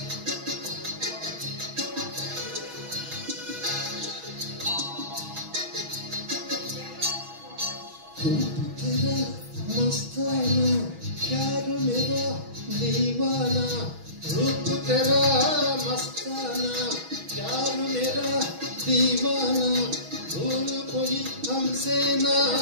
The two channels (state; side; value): late; left; 6.2 ms